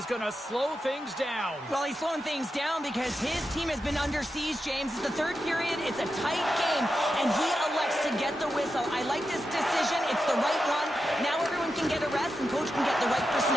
going to slow things down. Well, he's slowing things down because his team has been under siege, James. It's the third period. It's a tight game, and he elects to get the whistle. I like this decision. It's the right one. Now everyone can get a rest, and coach can get the right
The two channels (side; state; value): both; normal; correlation 0.88